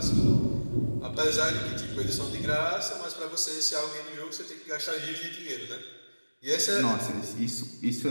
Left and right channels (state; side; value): inverted; both; correlation -1.00